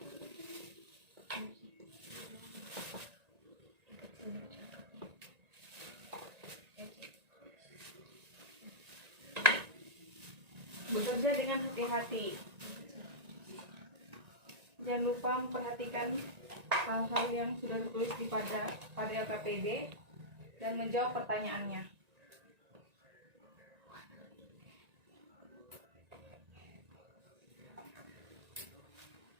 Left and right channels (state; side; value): late; left; 1.9 ms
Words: Bekerja dengan hati-hati. Jangan lupa memperhatikan hal-hal yang sudah tertulis pada LKPD dan menjawab pertanyaannya.